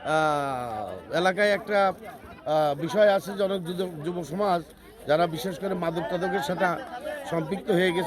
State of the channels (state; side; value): identical; both; correlation 1.00